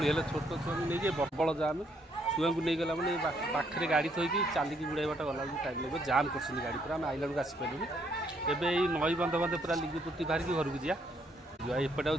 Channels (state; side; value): normal; both; correlation 0.70